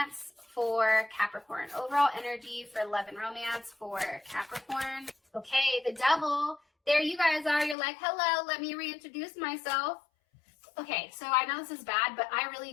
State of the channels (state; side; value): drops out; right; at 7.8 s